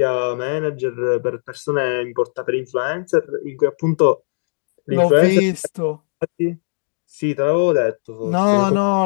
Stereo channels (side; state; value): right; silent; digital silence